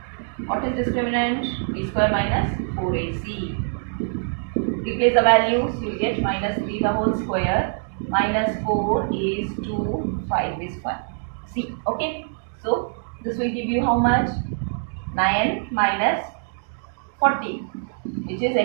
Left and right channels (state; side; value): silent; left; digital silence